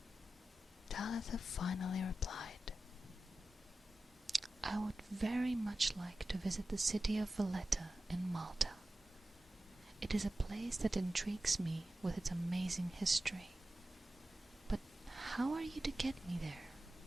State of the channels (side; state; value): both; normal; correlation 0.94